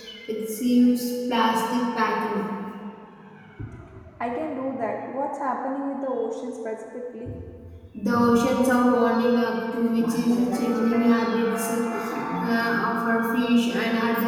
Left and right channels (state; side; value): identical; both; correlation 1.00